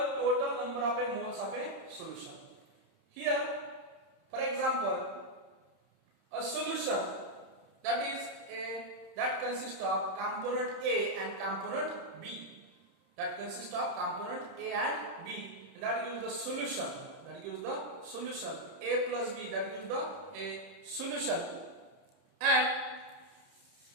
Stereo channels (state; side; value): late; left; 30 ms